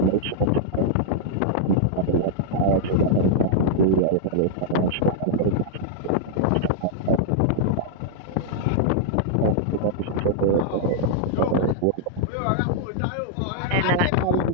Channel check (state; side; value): different; both; correlation -0.01